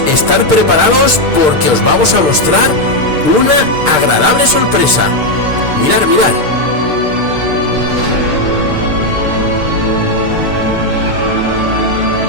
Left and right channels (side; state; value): left; late; 6.6 ms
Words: estar preparados porque os vamos a mostrar una agradable sorpresa. Mirad, mirad.